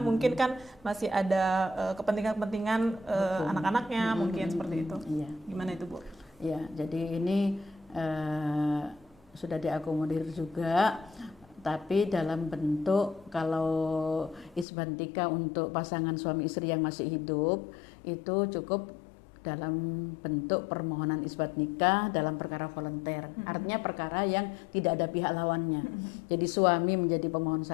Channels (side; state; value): right; drops out; at 14.7 s